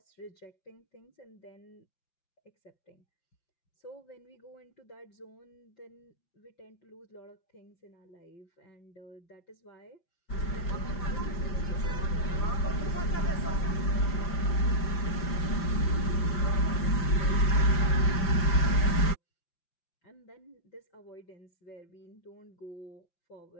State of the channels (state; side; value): late; right; 5.8 ms